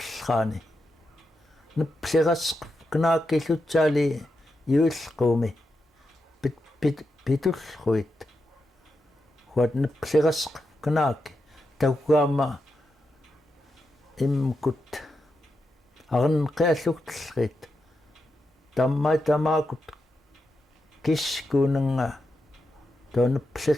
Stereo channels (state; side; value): normal; both; correlation 0.86